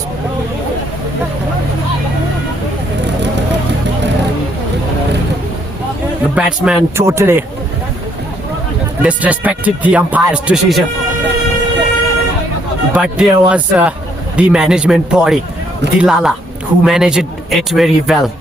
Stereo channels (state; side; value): normal; both; correlation 0.70